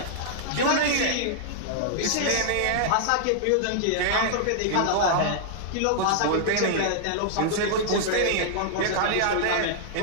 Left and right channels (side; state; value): both; different; correlation -0.01